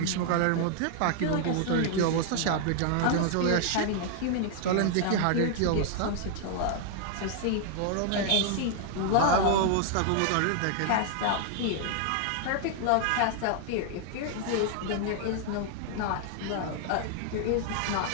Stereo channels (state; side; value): different; both; correlation 0.00